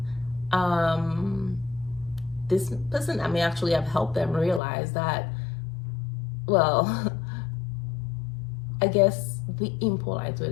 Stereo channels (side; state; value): right; drops out; at 4.6 s